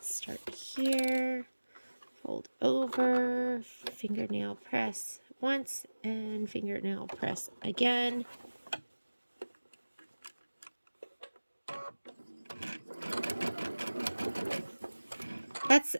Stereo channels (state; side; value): inverted; both; correlation -1.00